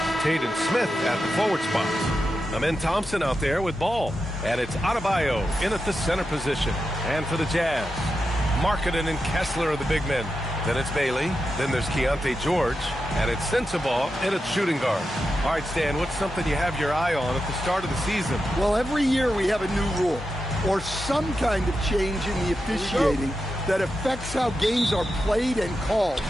Taden Smith at the forward spot. Amen Thompson out there with ball. And it's Adebayo in at the center position. And for the Jazz, Markkanen and Kessler are the big men. Then it's Bailey. Then there's Keontae George. And it's Sensabaugh in at shooting guard. All right, Stan, what's something you have your eye on at the start of the season? Well, every year we have a new rule or some kind of change in the officiating that affects how games are played and called.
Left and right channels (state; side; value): normal; both; correlation 0.89